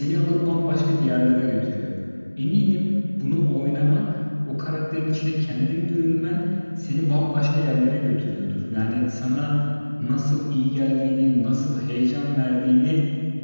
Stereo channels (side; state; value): both; inverted; correlation -1.00